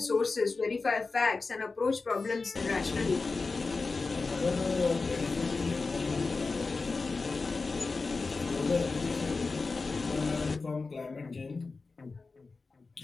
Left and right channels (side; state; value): right; quieter; 4.0 dB